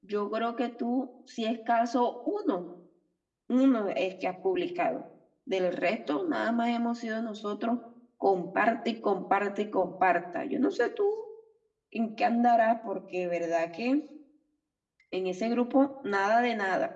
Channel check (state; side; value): identical; both; correlation 1.00